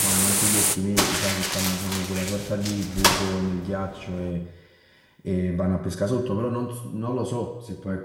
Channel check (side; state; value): both; identical; correlation 1.00